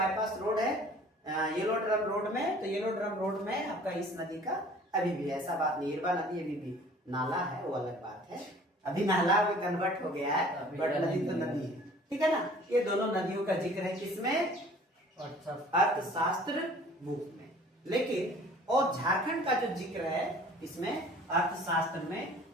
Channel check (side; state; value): both; normal; correlation 0.50